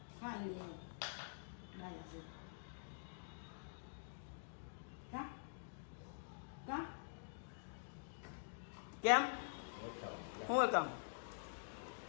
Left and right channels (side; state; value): right; silent; digital silence